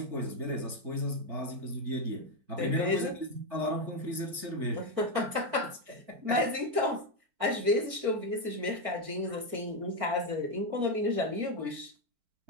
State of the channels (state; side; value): late; left; 4.5 ms